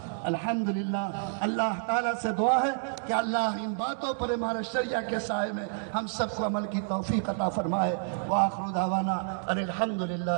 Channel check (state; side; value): silent; left; digital silence